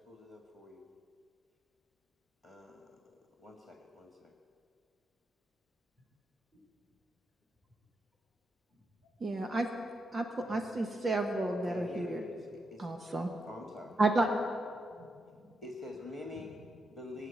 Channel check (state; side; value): normal; both; correlation 0.83